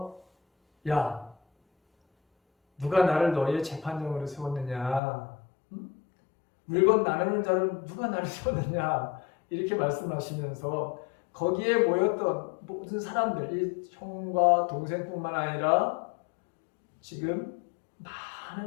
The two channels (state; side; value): drops out; right; at 5.0 s